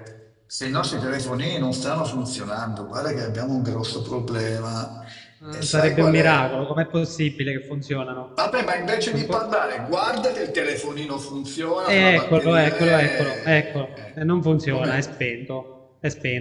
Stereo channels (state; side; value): identical; both; correlation 1.00